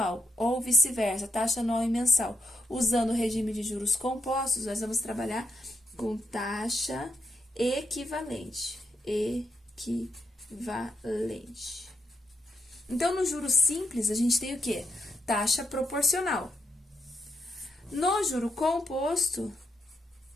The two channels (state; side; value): normal; both; correlation 0.82